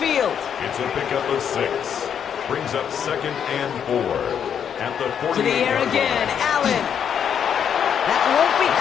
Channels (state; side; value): quieter; right; 8.2 dB